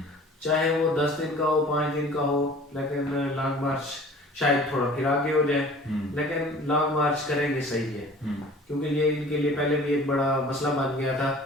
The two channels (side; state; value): both; normal; correlation 0.47